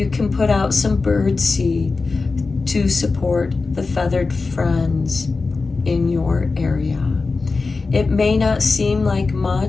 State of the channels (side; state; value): right; quieter; 4.0 dB